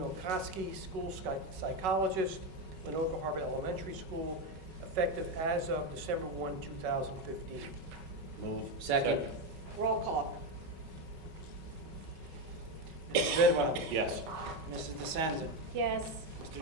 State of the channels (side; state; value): left; late; 5.3 ms